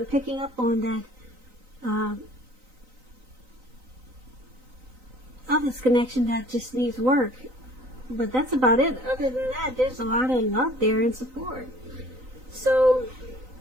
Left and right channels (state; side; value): late; left; 3.9 ms